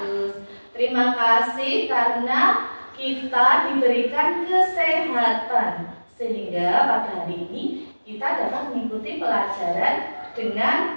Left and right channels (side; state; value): both; inverted; correlation -1.00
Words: Terima kasih karena kita diberikan kesehatan sehingga pada hari ini kita dapat mengikuti pelajaran